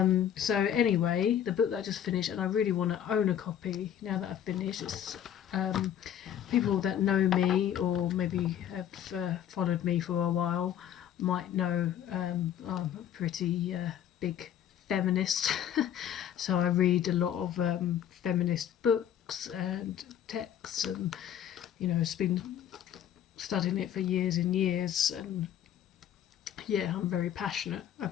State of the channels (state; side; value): quieter; right; 10.0 dB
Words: So anyway, the book that I just finished, and I really want to own a copy now that I've finished. It's people that know me or maybe have followed me for a while might know I'm a pretty big feminist. So I read a lot of feminist books and texts, and it's been studying it for years and years, and yeah, I'm very passionate